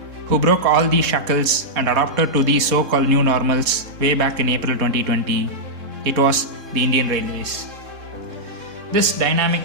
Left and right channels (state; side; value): late; left; 3.7 ms